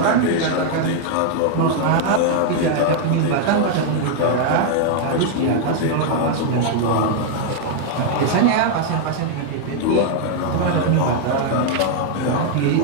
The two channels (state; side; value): different; both; correlation 0.00